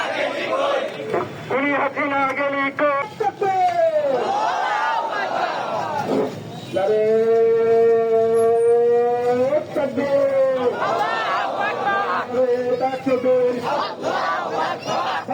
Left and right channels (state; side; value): identical; both; correlation 1.00